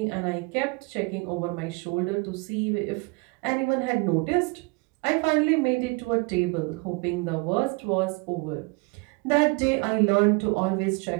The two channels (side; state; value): left; quieter; 28.7 dB